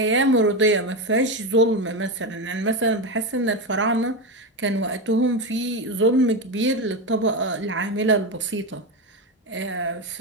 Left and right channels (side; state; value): both; normal; correlation 0.14